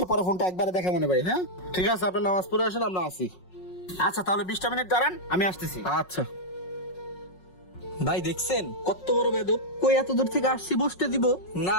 পরে ফোনটা একবারে দেখা মনে ভাই। হ্যাঁ ঠিক আছে, আপনি নামাজ পড়ে আসেন, আমরা আসি। আচ্ছা তাহলে 20টা মিনিট দাঁড়ান, আমি আসতেছি। আচ্ছা। ভাই দেখছেন কত বড় বেদব, কই এত দূর থেকে আসছি বসতে দিব না,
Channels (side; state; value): right; late; 5.5 ms